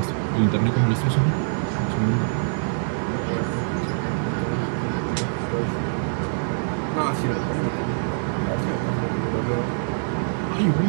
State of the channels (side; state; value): left; silent; digital silence